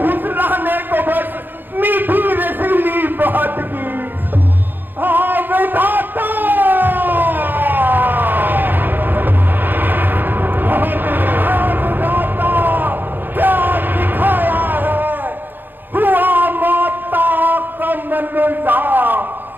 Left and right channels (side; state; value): left; late; 0.091 ms